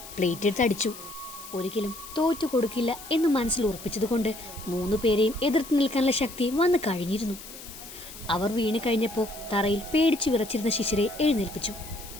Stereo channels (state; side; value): noise; left; hiss, 14 dB below the sound